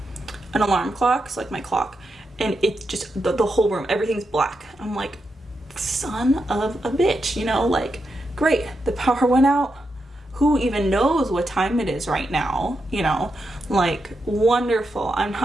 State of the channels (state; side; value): normal; both; correlation 0.85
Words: alarm clock, so like my clock, and it's just the whole room, everything's black. I'm like, son of a bitch, you know, like, great, the power went out. Who even knows what time it is right now, you know, like, wonderful. I'm